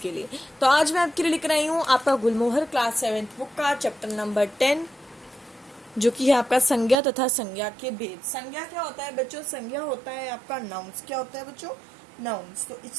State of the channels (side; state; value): left; drops out; at 7.0 s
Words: लिए। तो आज मैं आपके लिए लेकर आई हूँ आपका गुलमोहर क्लास 7th बुक का चैप्टर नंबर 10, जो कि है आपका संज्ञा तथा संज्ञा के भेद। संज्ञा क्या होता है बच्चों? संज्ञा होता है आपका नाउन्स। क्या होता है बच्चों? नाउन्स। तो